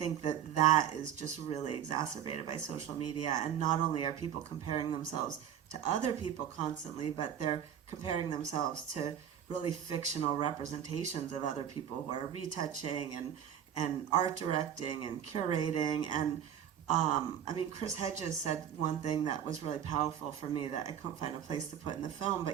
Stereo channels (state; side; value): quieter; left; 9.5 dB